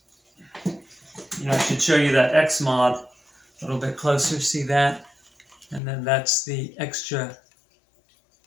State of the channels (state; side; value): drops out; right; at 5.8 s